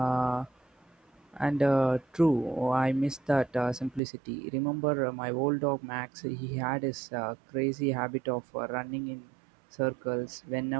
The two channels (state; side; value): drops out; left; at 4.0 s